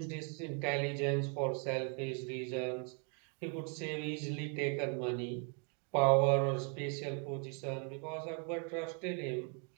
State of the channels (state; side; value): quieter; left; 39.5 dB